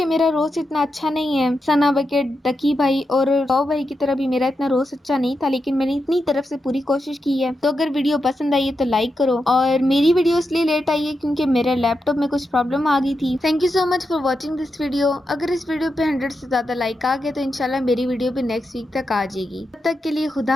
मेरा रोस्ट इतना अच्छा नहीं है, सना बकेट, डकी भाई और टॉप भाई की तरह भी मेरा इतना रोस्ट अच्छा नहीं था, लेकिन मैंने इतनी तरफ से पूरी कोशिश की है। तो अगर वीडियो पसंद आई है तो लाइक करो। और मेरी वीडियो इसलिए लेट आई है क्योंकि मेरे लैपटॉप में कुछ प्रॉब्लम आ गई थी। Thank you so much for watching this video. अगर इस वीडियो पे 100 से ज्यादा लाइक आ गए तो इंशाल्लाह मेरी वीडियो भी नेक्स्ट वीक तक आ जाएगी। तब तक के लिए खुदा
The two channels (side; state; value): both; normal; correlation 0.87